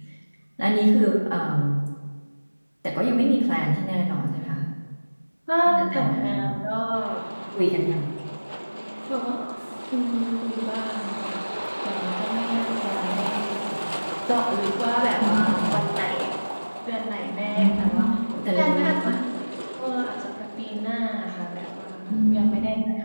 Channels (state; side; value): inverted; both; correlation -1.00